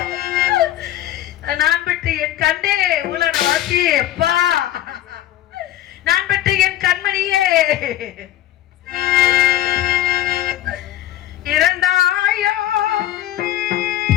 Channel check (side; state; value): right; quieter; 13.1 dB